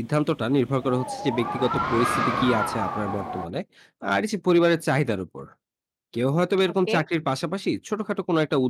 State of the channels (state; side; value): identical; both; correlation 1.00